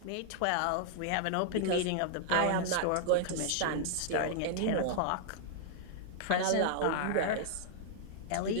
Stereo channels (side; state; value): both; different; correlation -0.01